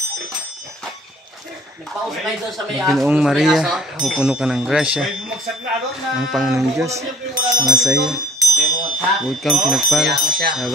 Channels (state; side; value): normal; both; correlation 0.52